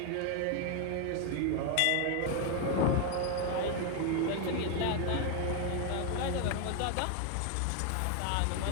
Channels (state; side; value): different; both; correlation 0.01